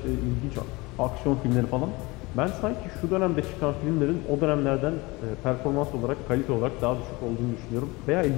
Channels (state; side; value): quieter; right; 23.5 dB